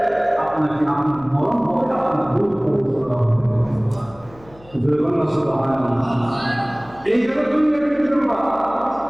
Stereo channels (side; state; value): left; noise; hum, 24 dB below the sound